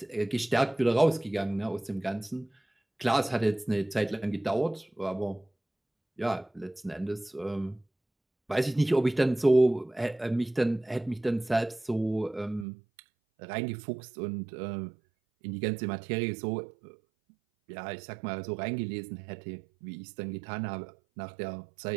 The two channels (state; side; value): drops out; left; at 12.7 s